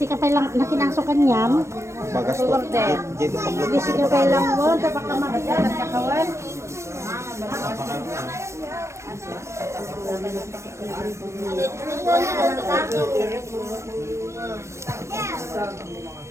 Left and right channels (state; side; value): late; left; 0.13 ms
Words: ka pa lang nakinasukan niyan. Bagas to. Hindi ka pa lang mo. Dapat ka makita nagkakawan.